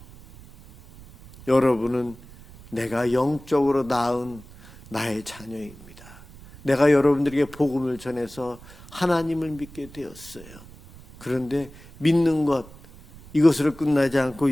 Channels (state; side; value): noise; right; rumble, 20 dB below the sound